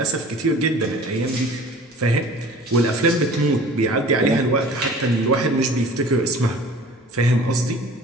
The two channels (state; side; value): normal; both; correlation 0.45